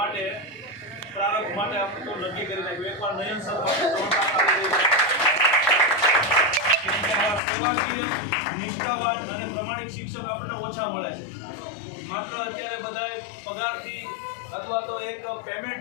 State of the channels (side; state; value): right; drops out; at 7.4 s